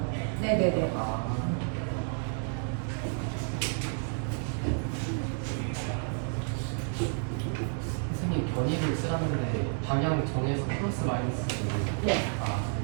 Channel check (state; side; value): silent; left; 56 dB below the other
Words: 네네네. 선생님 견이를 쓰라는데 방향 정해서 플러스 마이너스 네.